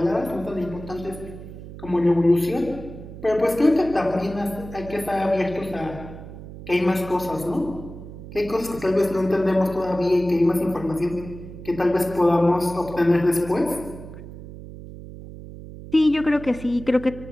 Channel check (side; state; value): right; noise; hum, 14 dB below the sound